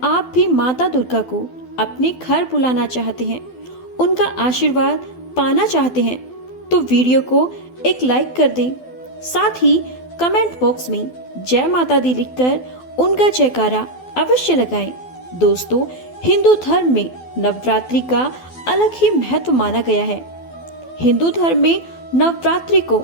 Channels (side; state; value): right; late; 12 ms